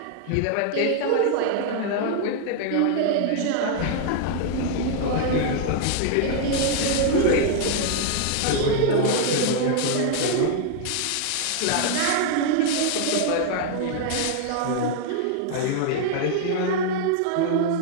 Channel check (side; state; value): both; different; correlation 0.00